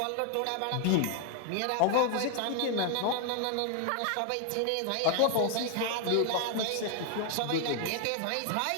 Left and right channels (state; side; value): different; both; correlation 0.00